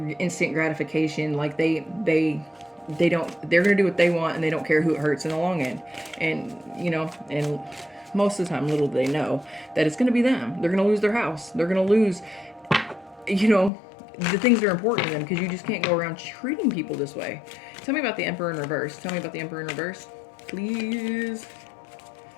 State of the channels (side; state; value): right; drops out; at 13.7 s